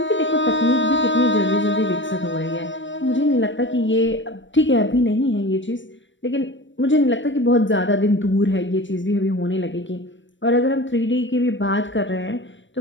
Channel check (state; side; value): late; right; 0.54 ms